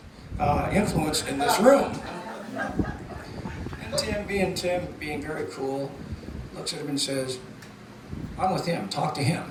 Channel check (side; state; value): both; identical; correlation 1.00